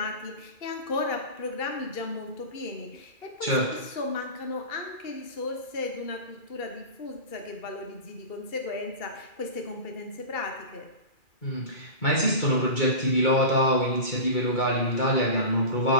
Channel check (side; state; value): right; late; 2.4 ms